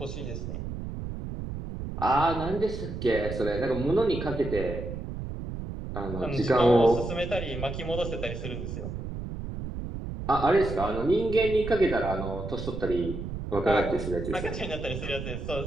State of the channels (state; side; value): noise; right; rumble, 6 dB below the sound